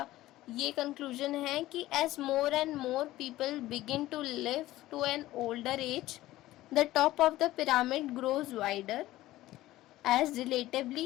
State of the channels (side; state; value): right; quieter; 16.1 dB